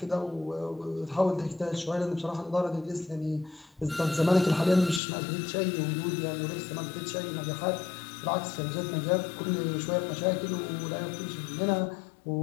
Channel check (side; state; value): right; drops out; at 5.0 s